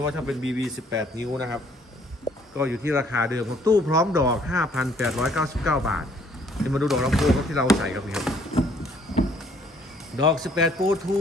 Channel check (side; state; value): both; normal; correlation 0.62